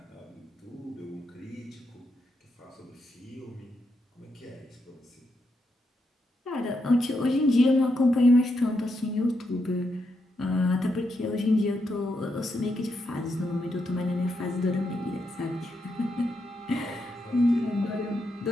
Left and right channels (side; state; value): both; normal; correlation 0.82